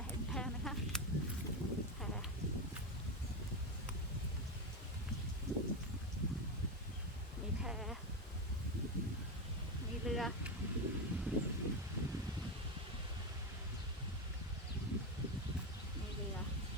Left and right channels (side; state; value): both; normal; correlation 0.13